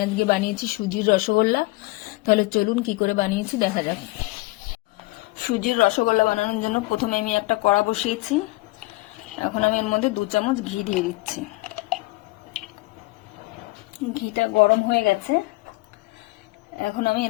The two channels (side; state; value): right; quieter; 22.5 dB